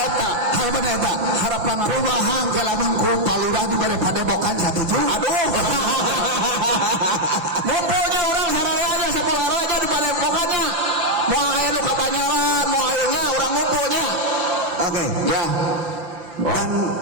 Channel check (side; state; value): left; late; 5.9 ms